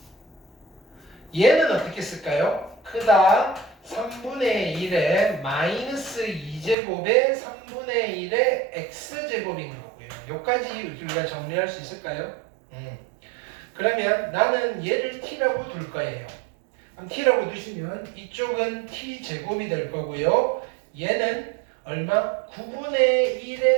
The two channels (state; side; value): drops out; left; at 6.8 s